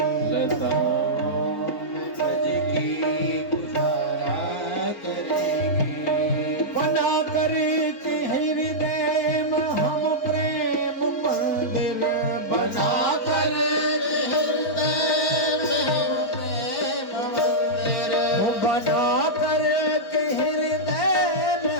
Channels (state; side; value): late; right; 3.9 ms